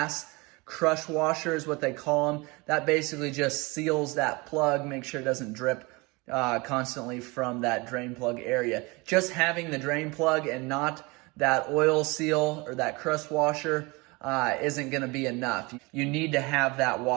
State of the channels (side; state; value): left; quieter; 25.9 dB